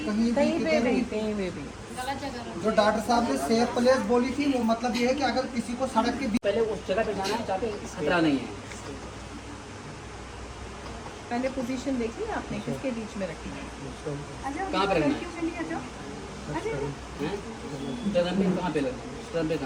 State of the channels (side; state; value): both; identical; correlation 1.00